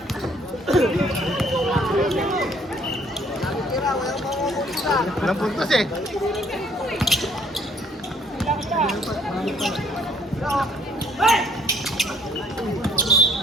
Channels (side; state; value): both; normal; correlation 0.62